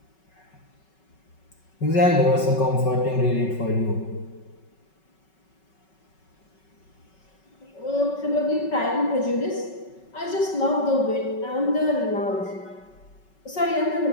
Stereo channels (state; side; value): late; right; 5.3 ms